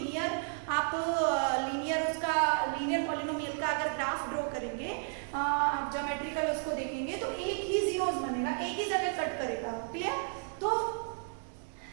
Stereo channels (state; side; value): silent; left; 56 dB below the other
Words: आप लीनियर पॉलिनोमियल का अगर ग्राफ ड्रॉ करेंगे, आप ज्योमेट्रिकल उसको देखेंगे तो एक ही जीरोस बनेगा, एक ही जगह कट करेगा। क्लियर? तो